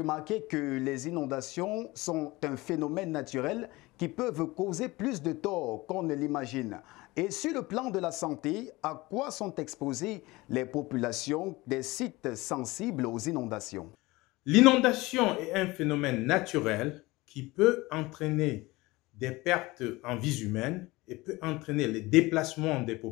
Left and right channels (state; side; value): quieter; right; 21.1 dB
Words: que les inondations sont un phénomène naturel qui peuvent causer plus de tort qu'on ne l'imagine. Et sur le plan de la santé, à quoi sont exposées les populations des sites sensibles aux inondations? L'inondation est un phénomène naturel qui peut entraîner des pertes en vies humaines et peut entraîner le déplacement des